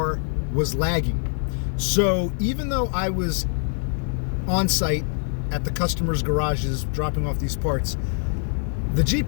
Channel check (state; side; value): silent; right; 56 dB below the other